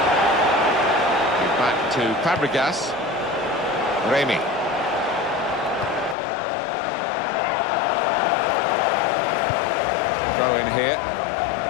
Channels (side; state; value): right; drops out; at 6.2 s